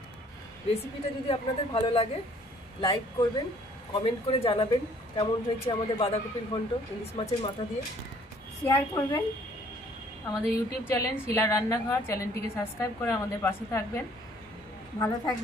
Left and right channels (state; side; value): normal; both; correlation 0.59